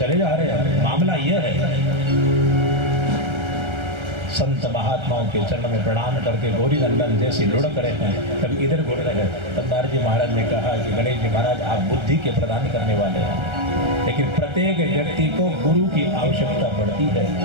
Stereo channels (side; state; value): left; late; 1.3 ms